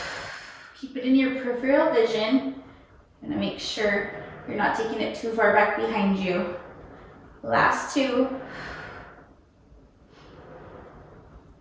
Keep it in your peripheral vision. I'm gonna make sure you're not taking it too far back behind you. Last 2.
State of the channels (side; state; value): both; identical; correlation 1.00